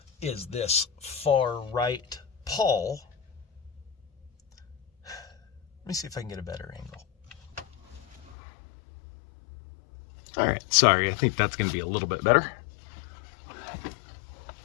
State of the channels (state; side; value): drops out; right; at 8.3 s